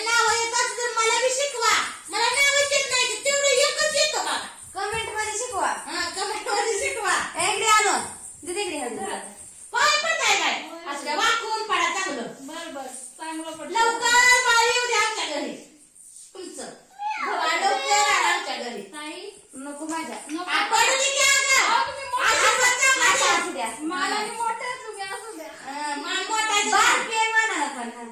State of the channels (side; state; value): both; identical; correlation 1.00